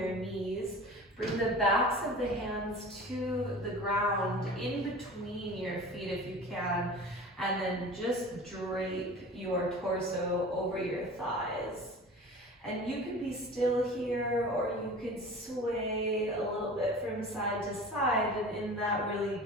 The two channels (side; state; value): both; normal; correlation 0.39